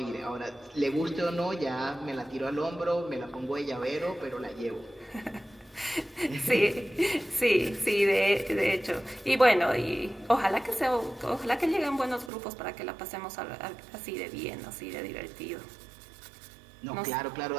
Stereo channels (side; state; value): left; drops out; at 12.3 s